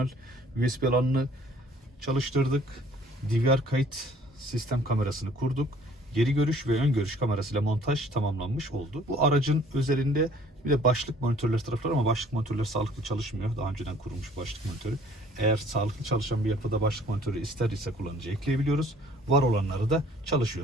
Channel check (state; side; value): normal; both; correlation 0.56